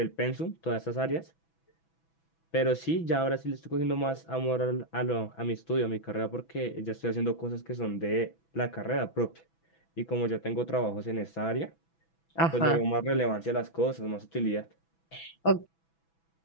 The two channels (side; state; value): right; late; 6.1 ms